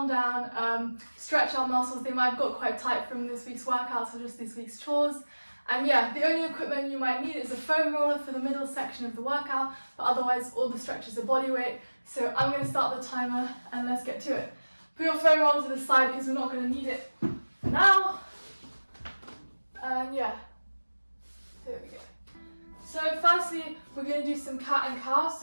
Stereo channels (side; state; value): both; inverted; correlation -1.00